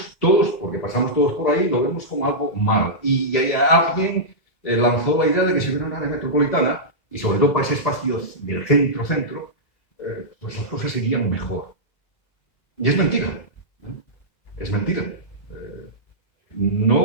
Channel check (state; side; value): late; right; 1.7 ms